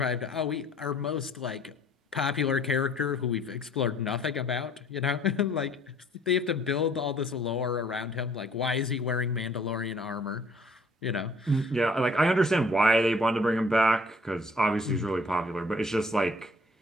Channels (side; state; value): both; normal; correlation 0.57